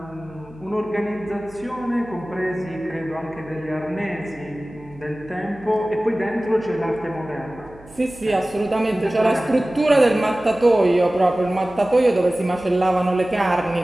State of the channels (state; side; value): noise; right; hum, 23 dB below the sound